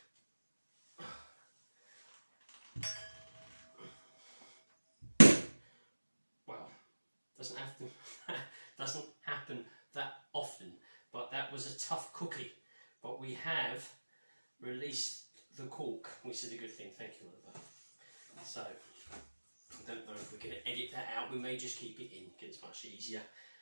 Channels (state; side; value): inverted; both; correlation -1.00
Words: Well, doesn't happen that often, but that was a tough cookie. But we have released the cork, which is a good thing. Thank you, Oliver. So, I don't know if we're going to edit that out. We may just keep it in because it's much easier.